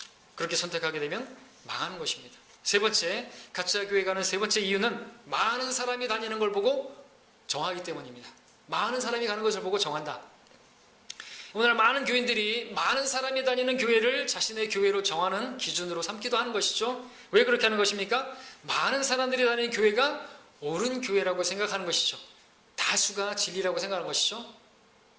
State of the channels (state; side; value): identical; both; correlation 1.00